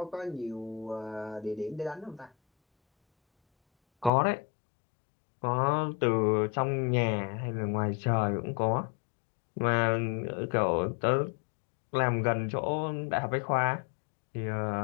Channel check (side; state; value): right; drops out; at 4.1 s